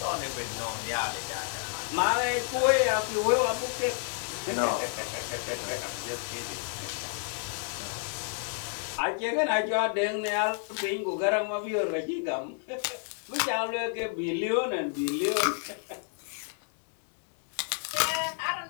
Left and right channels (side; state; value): right; silent; 57 dB below the other